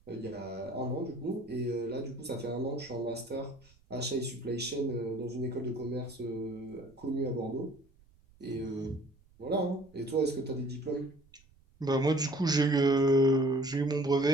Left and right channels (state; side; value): noise; right; rumble, 29 dB below the sound